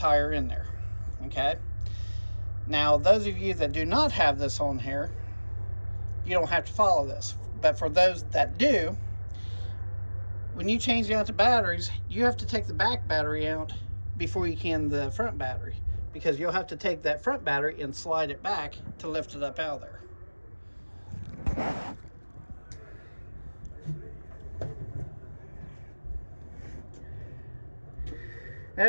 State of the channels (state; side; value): inverted; both; correlation -1.00